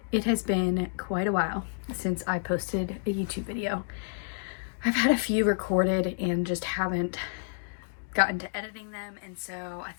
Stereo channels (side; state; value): right; silent; digital silence